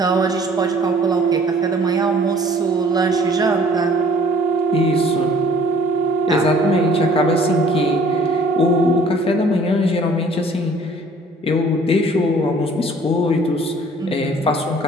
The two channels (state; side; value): normal; both; correlation 0.55